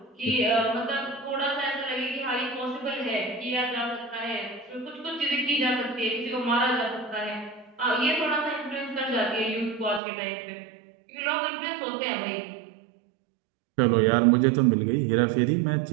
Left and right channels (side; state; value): left; drops out; at 10.0 s